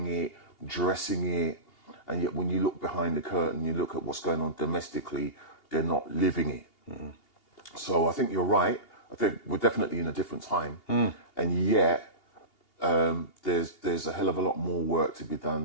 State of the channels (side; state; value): right; late; 2.8 ms